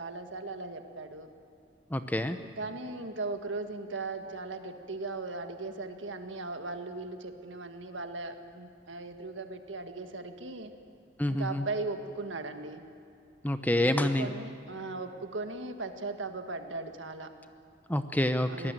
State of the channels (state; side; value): normal; both; correlation 0.48